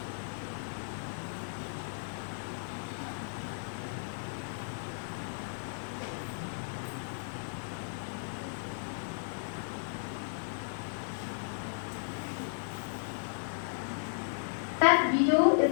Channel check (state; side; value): silent; right; digital silence